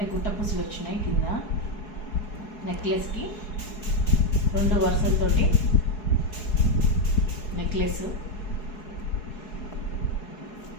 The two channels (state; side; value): late; right; 4.7 ms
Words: గుట్టపూసలు వచ్చినాయి కింద నెక్లెస్కి. 2 వరుసలతోటి నెక్లెస్.